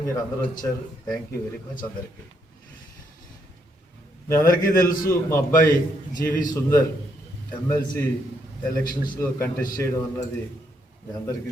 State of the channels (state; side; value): normal; both; correlation 0.75